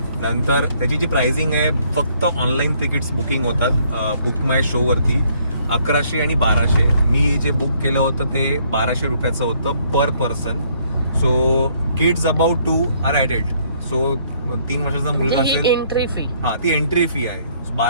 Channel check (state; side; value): inverted; both; correlation -0.66